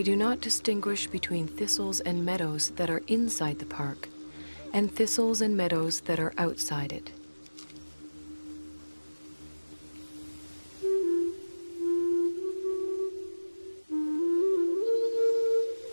do not distinguish between thistles and meadows that are inside the park and thistles and meadows that are outside it.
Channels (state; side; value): inverted; both; correlation -1.00